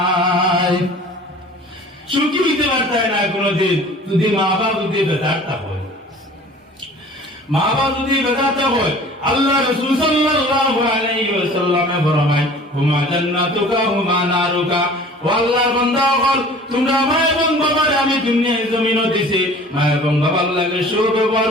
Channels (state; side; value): normal; both; correlation 0.46